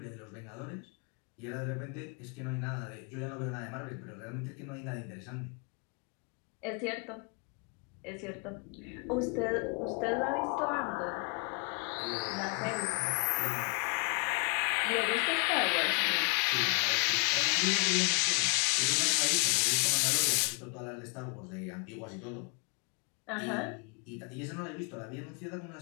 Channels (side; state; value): right; quieter; 34.4 dB